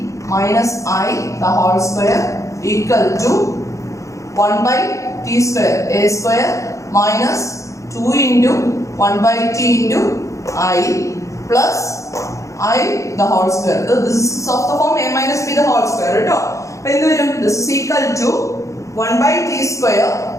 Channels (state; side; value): late; right; 0.15 ms